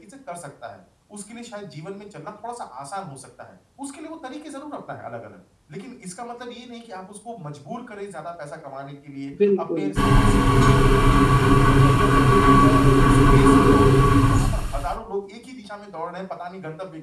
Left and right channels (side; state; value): both; identical; correlation 1.00